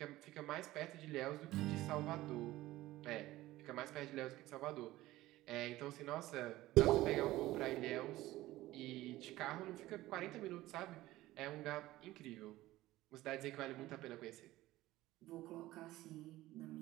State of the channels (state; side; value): quieter; left; 16.7 dB